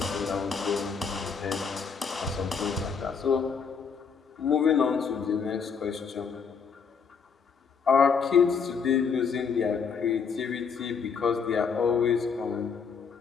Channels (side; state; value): right; quieter; 6.0 dB